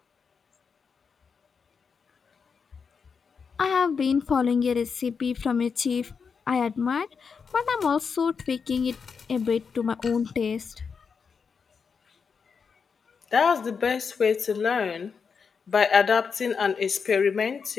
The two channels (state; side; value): quieter; right; 5.8 dB